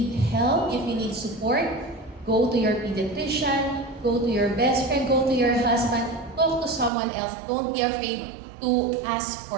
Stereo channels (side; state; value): left; drops out; at 6.9 s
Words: help, if you need support, go to your pediatrician, go to your best friend, go to your husband, talk to someone else. Don't be afraid to ask